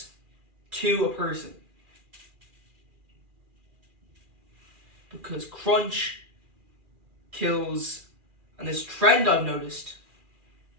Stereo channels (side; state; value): left; late; 2.4 ms